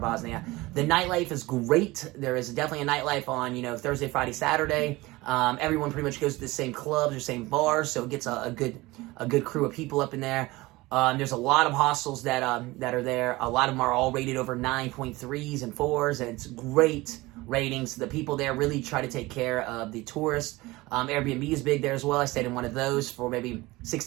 The nightlife is great. There is definitely a nightlife on, Thursday, Friday, Saturday. Everyone pretty much goes to the same clubs or same bars, so it gets a good crew of people up in there. There's a lot of hostels that are there. A lot of them are all rated over 9.3s and 4s, and it's great ratings. The people there really try to take care of the tourists. Airbnb is big there as well. I stayed in one of those for maybe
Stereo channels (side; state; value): left; quieter; 20.8 dB